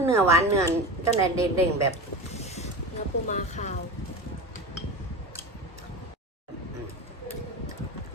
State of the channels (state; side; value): normal; both; correlation 0.27